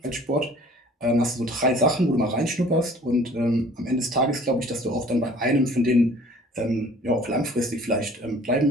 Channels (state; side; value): normal; both; correlation 0.51